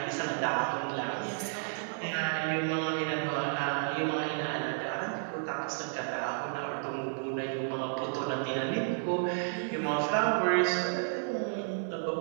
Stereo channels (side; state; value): left; silent; digital silence